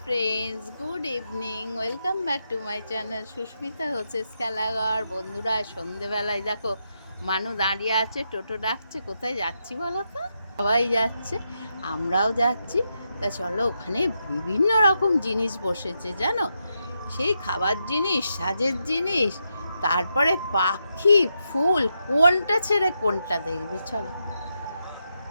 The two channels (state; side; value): inverted; both; correlation -0.83